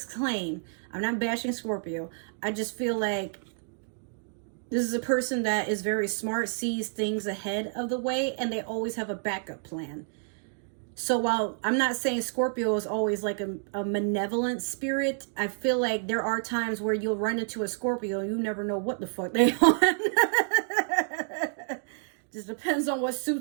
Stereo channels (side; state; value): left; silent; digital silence